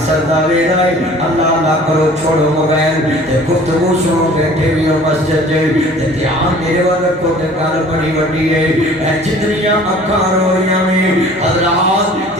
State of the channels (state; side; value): normal; both; correlation 0.49